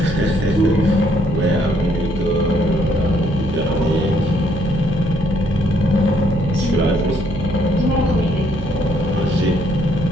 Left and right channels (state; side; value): noise; right; hum, 8 dB below the sound